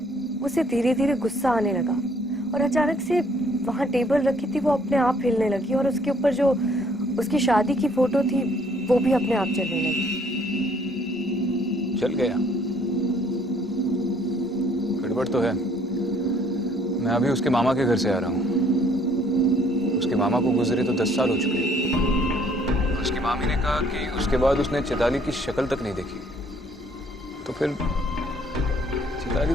उसे धीरे धीरे गुस्सा आने लगा और अचानक से वहां टेबल रखी थी वो अपने आप हिलने लगी और उसके ऊपर जो उसकी शादी की फोटो थी वो भी अपने आप चलने लगी। चल गया? गड़बड़ तो है। मैं अभी उसके मामा के घर से आ रहा हूँ। उसके मामा को गुजरे तो 10 साल हो चुके हैं। उसकी मामी ने कहा कि उसके बाद उसने चैताली की शक्ल तक नहीं देखी। तो फिर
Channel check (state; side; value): normal; both; correlation 0.62